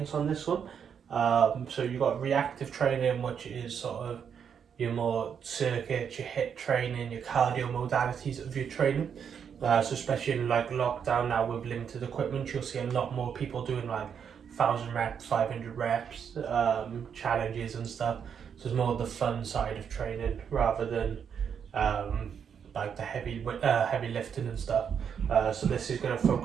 on this one. So you've got reactive training, which is sort of your more circuits, your hit training, your cardio modalities of your training. So especially in like lockdown now with limited equipment, you'll see a lot more people doing like 1,000 reps, 500 reps, challenges and stuff. So it's more the fun side of training rather than um, like the heavy lifting and stuff. So this is going to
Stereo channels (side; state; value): left; quieter; 7.5 dB